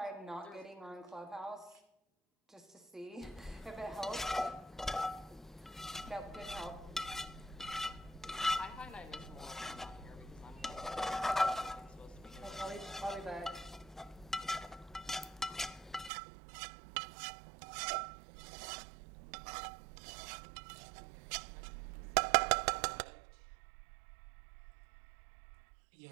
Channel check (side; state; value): left; drops out; at 16.1 s